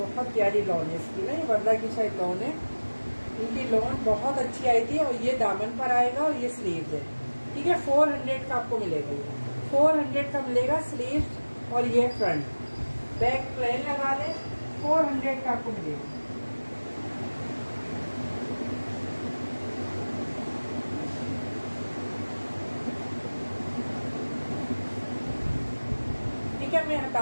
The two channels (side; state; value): both; inverted; correlation -1.00